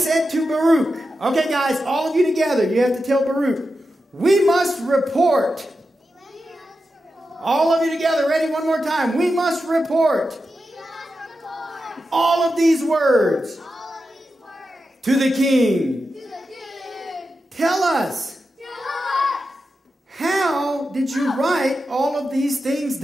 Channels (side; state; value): both; normal; correlation 0.90